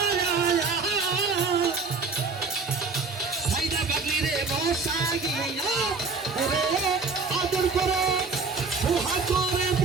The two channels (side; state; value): left; quieter; 4.4 dB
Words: সাইদা পাগলিরে বসা গিয়া আদর করে সুহা করে